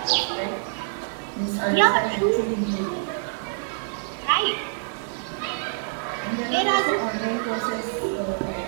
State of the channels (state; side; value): silent; left; digital silence